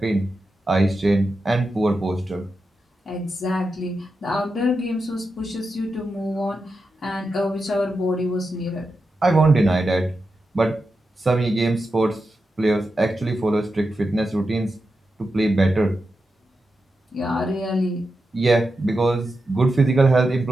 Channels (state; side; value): normal; both; correlation 0.89